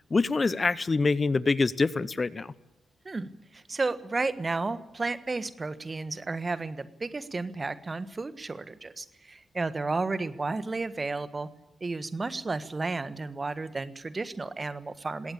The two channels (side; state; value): both; normal; correlation 0.92